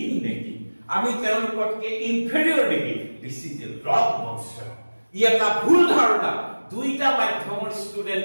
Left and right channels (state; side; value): inverted; both; correlation -1.00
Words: নেকি আমি তেওঁলোকতকে ইনফেৰিয়ৰ নেকি দিছ ইজ এ ৰং নচন ই এটা ভুল ধাৰণা দুইটা মাধ্যমৰ